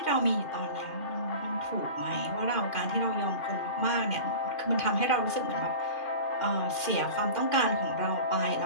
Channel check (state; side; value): late; right; 2.5 ms